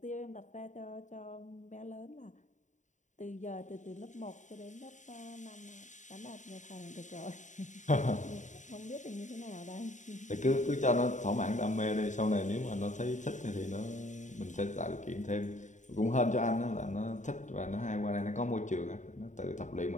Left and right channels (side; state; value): right; late; 0.36 ms